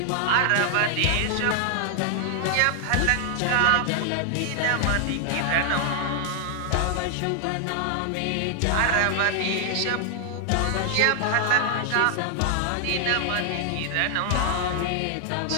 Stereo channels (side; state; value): both; different; correlation 0.00